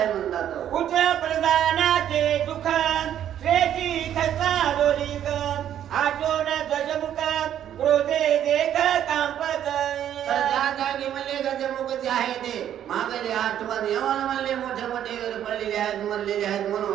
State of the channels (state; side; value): quieter; left; 10.5 dB